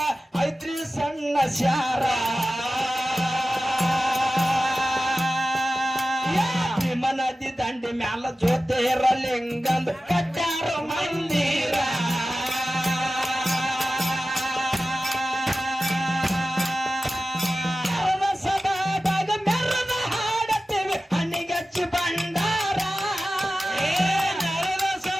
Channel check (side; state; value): both; normal; correlation 0.95